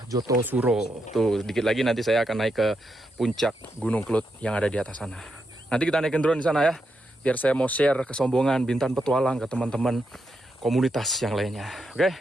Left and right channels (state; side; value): normal; both; correlation 0.83